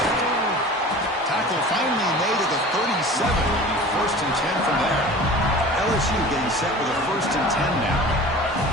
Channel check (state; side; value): normal; both; correlation 0.40